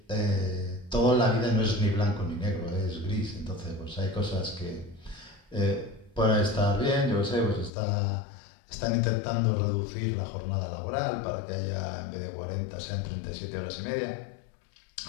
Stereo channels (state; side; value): drops out; right; at 7.7 s